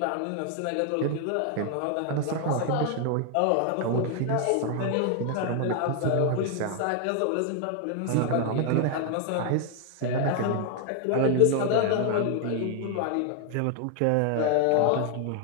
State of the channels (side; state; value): both; different; correlation 0.00